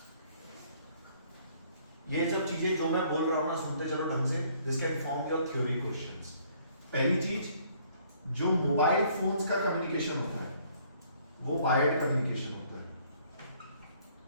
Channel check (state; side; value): inverted; both; correlation -0.62